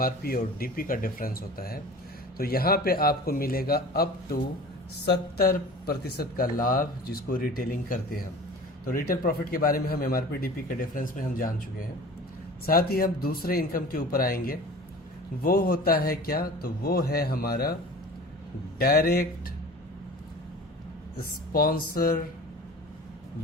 और डीपी का डिफरेंस होता है। तो यहाँ पे आपको मिलेगा अप टू 70% का लाभ जिसको रिटेलिंग करते हैं हम। तो रिटेल प्रॉफिट के बारे में हम एमआरपी डीपी के डिफरेंस में हम जान चुके हैं। साथ ही हम दूसरे इनकम के ऊपर आएंगे, वो होता है क्या? तो वो है हमारा डायरेक्ट स्पॉन्सर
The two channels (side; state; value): both; normal; correlation 0.40